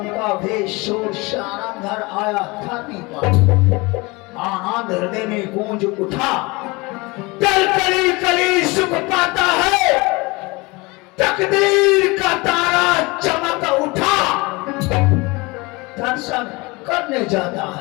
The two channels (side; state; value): right; quieter; 25.0 dB